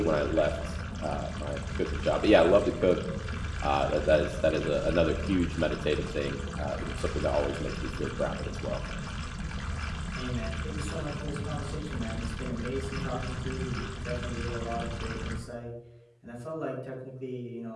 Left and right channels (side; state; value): both; identical; correlation 1.00